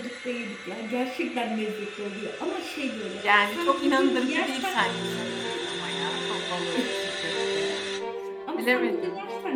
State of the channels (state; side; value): identical; both; correlation 1.00